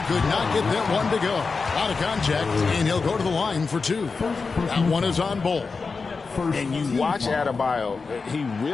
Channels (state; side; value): quieter; right; 4.5 dB